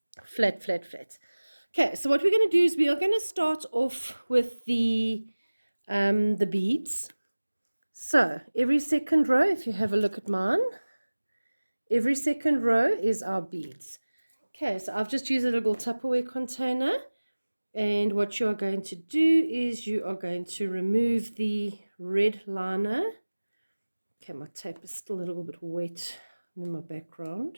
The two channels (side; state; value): both; inverted; correlation -1.00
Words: flat. Okay, so what we're going to do is we are going to start off with the beads. So every second row, if you have a look at mine, every second row is our beads. Okay, so I've just used a little Tupperware container. And what you are going to do is you are going to remove the red liner. Okay, my tape is still a little bit wet in my